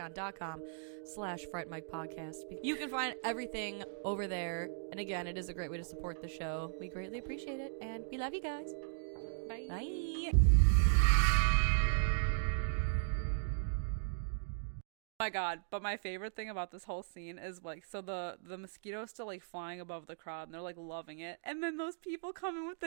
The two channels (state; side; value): silent; left; digital silence